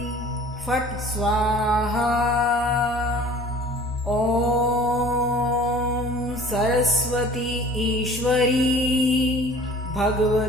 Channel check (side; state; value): both; normal; correlation 0.47